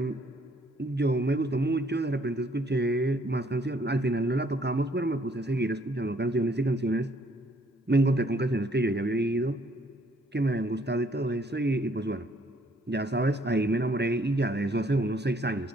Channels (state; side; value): normal; both; correlation 0.64